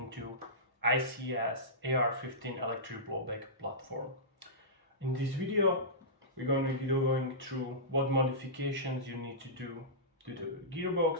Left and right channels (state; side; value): normal; both; correlation -0.17